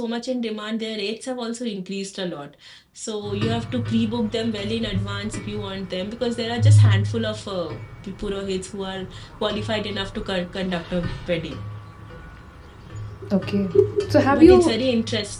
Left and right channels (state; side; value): identical; both; correlation 1.00